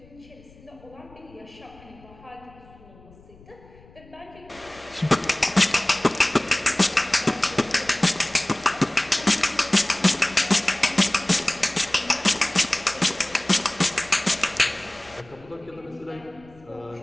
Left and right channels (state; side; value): noise; left; rumble, 24 dB below the sound